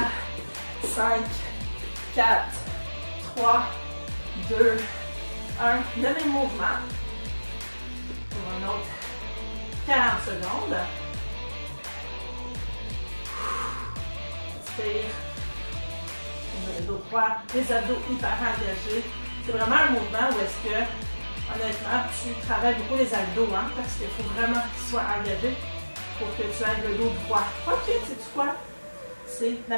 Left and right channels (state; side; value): inverted; both; correlation -1.00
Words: 5, 4, 3, 2, 1. Le même mouvement. Pour un autre 40 secondes. Inspire. On a le dos droit, les abdos hyper engagés. C'est vraiment un mouvement où est-ce que, honnêtement, tu travailles beaucoup les abdos, hein, parce qu'il faut vraiment qu'ils soient engagés pour que tu aies le dos droit. Ok, sais-tu quoi? C'est